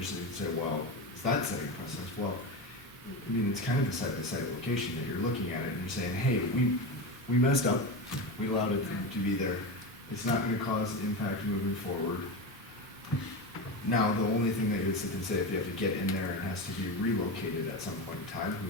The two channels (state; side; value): noise; left; hum, 29 dB below the sound